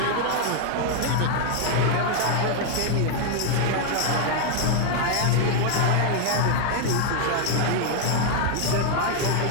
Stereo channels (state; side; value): different; both; correlation 0.00